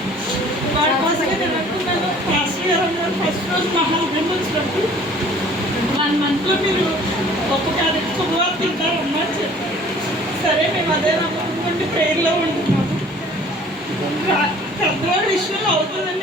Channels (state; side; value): normal; both; correlation 0.51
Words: వాడి కోసమే నేను అనుకున్నాను, ఫస్ట్ ఇయర్ అన్నారు. ఫస్ట్ రోజు మహాభం వచ్చినప్పుడు 1 monthలో మీరు గొప్ప క్యారెట్ శుభవార్త తింటారమ్మా అని చెప్పారు. సరే మేము అదే నమ్ముకుంటే ప్రేయర్లో ఉంటున్నాము. పెద్దవాడి విషయంలో అవుతుందని